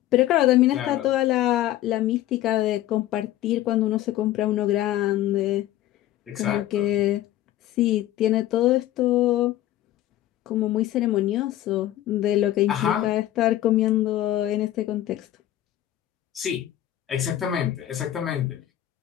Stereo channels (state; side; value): quieter; right; 13.6 dB